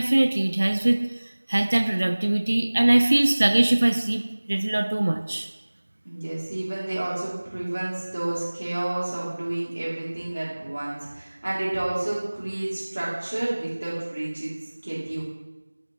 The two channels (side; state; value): both; inverted; correlation -1.00